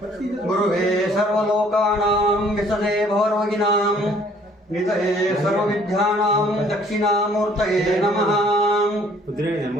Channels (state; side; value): normal; both; correlation 0.59